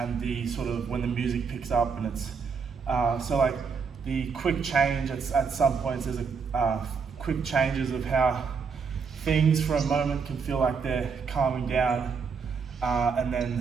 the sort of when the music picks up, and it's so like the quick change at some points. There's a quick changes of how things for a moment can feel like they're calming down, and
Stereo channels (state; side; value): quieter; left; 5.6 dB